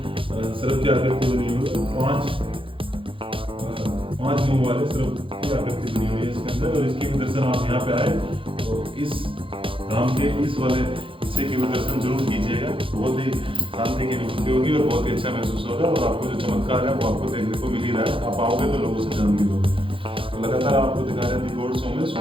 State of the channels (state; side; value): late; left; 0.25 ms